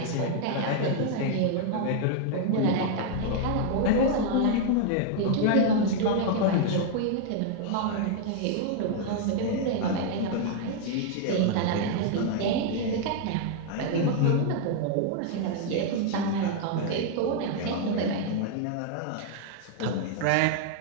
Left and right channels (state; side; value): different; both; correlation 0.00